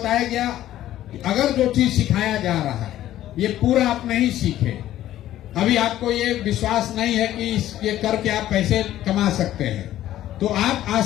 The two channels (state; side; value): quieter; right; 13.2 dB